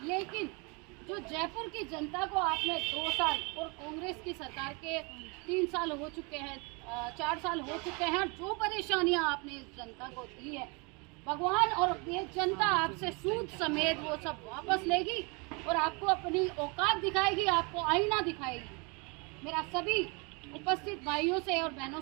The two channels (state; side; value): quieter; left; 30.7 dB